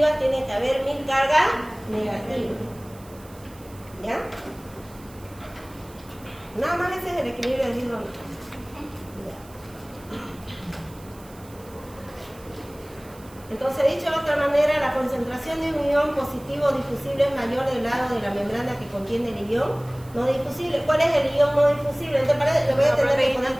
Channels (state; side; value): noise; right; hiss, 24 dB below the sound